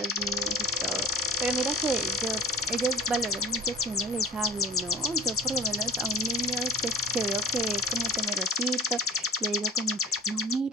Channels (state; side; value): normal; both; correlation 0.43